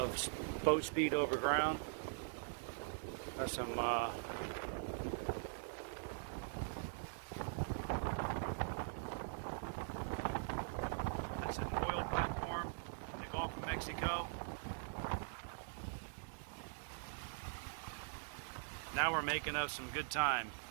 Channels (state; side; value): silent; left; digital silence